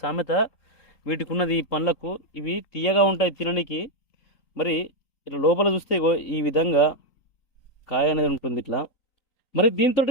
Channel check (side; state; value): right; late; 3.8 ms